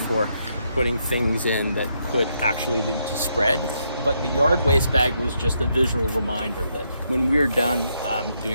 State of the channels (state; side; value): inverted; both; correlation -0.78